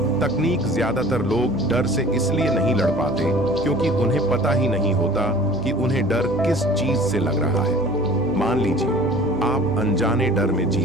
तकनीक ज्यादातर लोग डर से इसलिए नहीं लड़ पाते क्योंकि उन्हें पता ही नहीं होता कि उन्हें डर किस चीज से लग रहा है। मान लीजिए आप अनजाने डर में जी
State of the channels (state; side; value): noise; right; hum, 14 dB below the sound